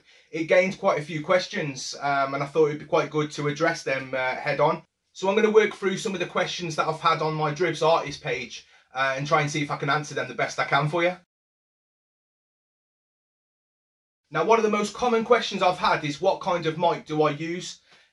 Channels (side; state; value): both; identical; correlation 1.00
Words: it gained quite a few questions and I thought it'd be quite good to address them head on. So I'm going to work through some of the questions that I've had on my Dribbz artist page and try and see if I can answer them the best I can for you. Now, one of the most common questions I've had is what kind of mic do I use?